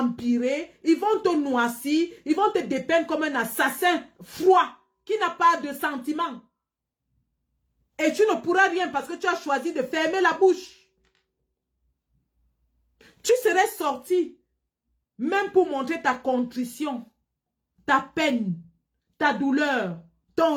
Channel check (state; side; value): identical; both; correlation 1.00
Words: ils vont te noircir, ils vont te dépeindre comme un assassin froid qui n'a pas de sentiments. Et tu ne pourras rien parce que tu as choisi de fermer la bouche. Tu serais sorti, même pour montrer ta contrition, ta peine, ta douleur, ton